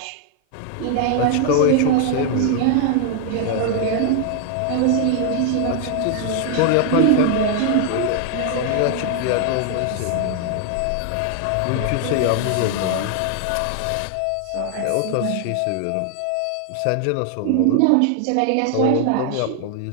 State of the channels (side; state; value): both; different; correlation 0.00